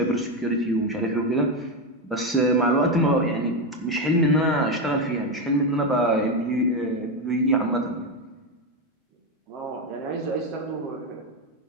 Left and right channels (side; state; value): both; normal; correlation 0.10